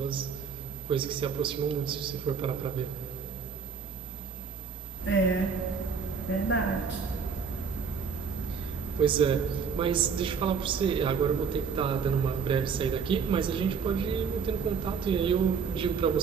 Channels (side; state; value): left; quieter; 6.2 dB